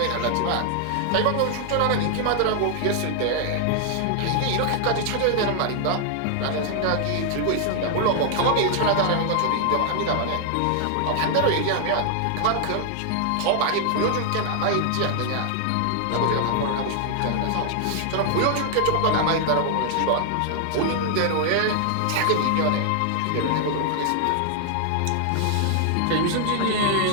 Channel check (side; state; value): both; different; correlation 0.00